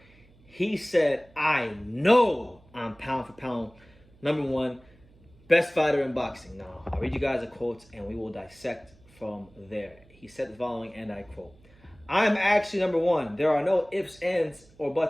He said, I know I'm pound for pound number one, best fighter in boxing. Now, I'll read you guys the quotes and we will dissect from there. He said the following, and I quote, I'm actually number one. There are no ifs, ands, or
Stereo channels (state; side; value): noise; right; hum, 28 dB below the sound